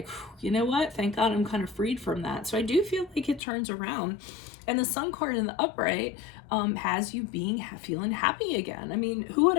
you know what? Thank God I'm kind of freed from that. So I do feel like it turns around. And the Sun card in the upright has you feeling happy again. I mean, who would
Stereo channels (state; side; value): drops out; right; at 3.4 s